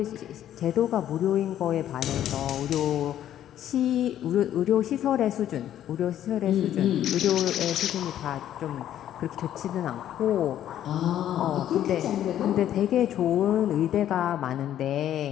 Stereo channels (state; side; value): quieter; right; 11.4 dB